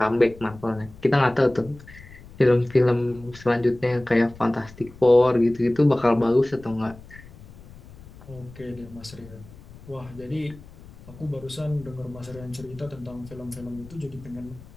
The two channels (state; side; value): noise; left; rumble, 20 dB below the sound